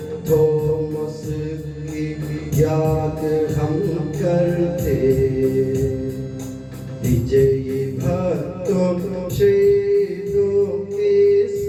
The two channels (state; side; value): identical; both; correlation 1.00